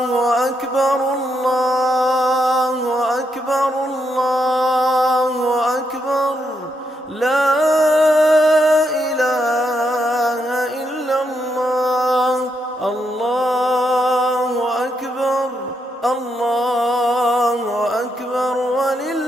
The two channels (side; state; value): both; normal; correlation 0.80